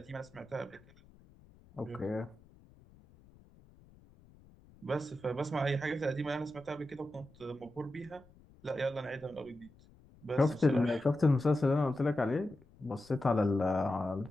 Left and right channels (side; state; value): left; noise; rumble, 26 dB below the sound